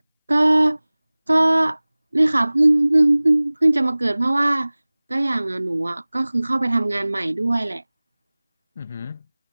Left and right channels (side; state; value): both; inverted; correlation -1.00